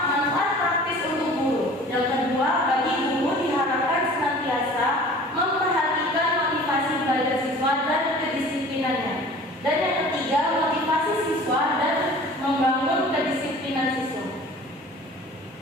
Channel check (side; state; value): both; normal; correlation 0.45